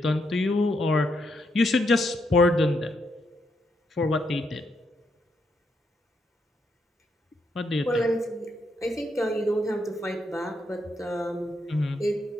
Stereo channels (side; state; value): both; normal; correlation 0.79